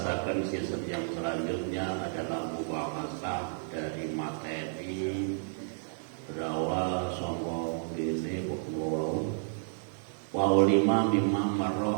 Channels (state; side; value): silent; left; digital silence